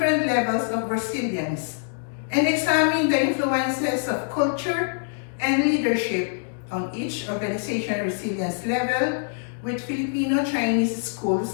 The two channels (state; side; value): silent; right; digital silence